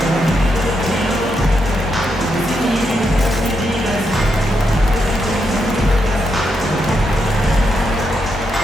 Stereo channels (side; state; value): both; normal; correlation 0.82